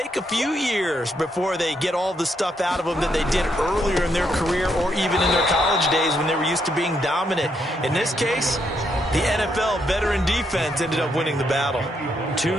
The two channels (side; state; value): both; normal; correlation 0.77